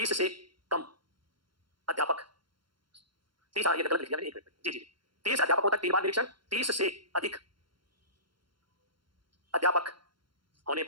से कम अध्यापक, 30, ये गलत लिख दिया मैंने, 1 मिनट जी 30 अध्यापकों तक 3 बार निरीक्षण। 30 से अधिक अध्यापक होने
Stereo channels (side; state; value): left; late; 0.72 ms